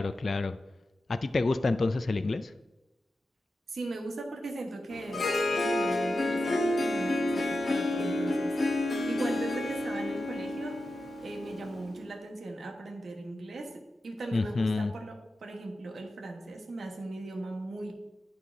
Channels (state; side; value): normal; both; correlation 0.91